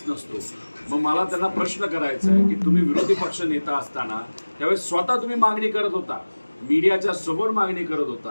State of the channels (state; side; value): inverted; both; correlation -1.00